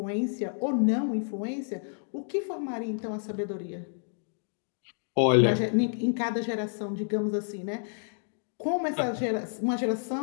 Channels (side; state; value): right; silent; digital silence